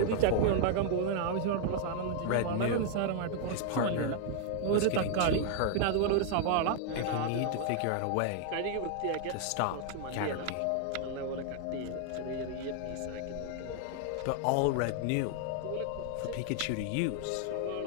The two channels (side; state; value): both; different; correlation 0.00